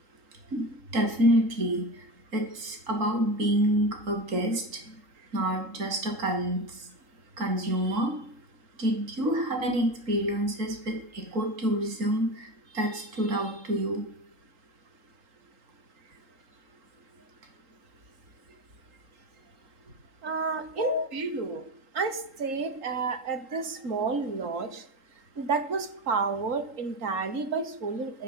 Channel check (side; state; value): left; late; 3.8 ms